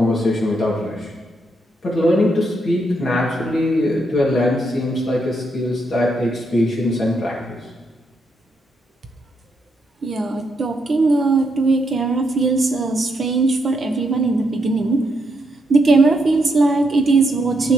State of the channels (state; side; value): normal; both; correlation 0.79